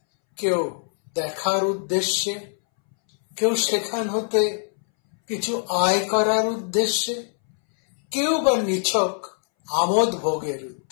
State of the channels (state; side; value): silent; right; 63 dB below the other